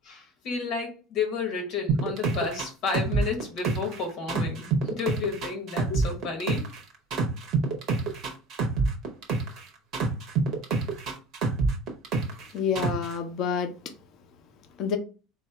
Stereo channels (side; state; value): both; normal; correlation 0.40